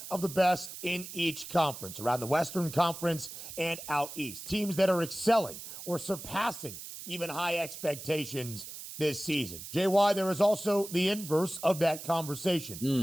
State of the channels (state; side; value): noise; right; hiss, 11 dB below the sound